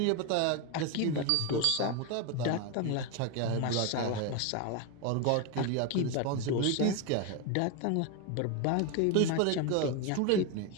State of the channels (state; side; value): different; both; correlation 0.02